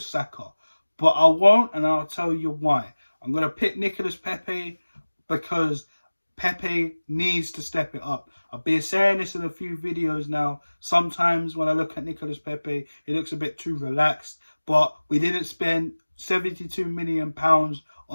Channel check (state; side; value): inverted; both; correlation -1.00